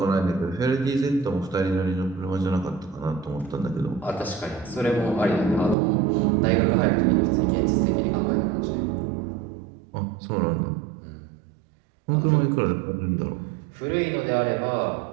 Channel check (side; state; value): left; drops out; at 5.8 s